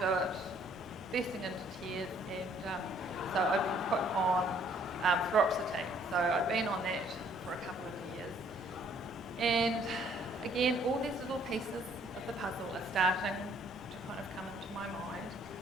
it, bursting into tears, and so I'd been put on fluoxetine. So I'd been on that for a couple of years. And again, all these little pieces of the puzzle are starting to kind of come into my mind.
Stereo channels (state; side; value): normal; both; correlation 0.62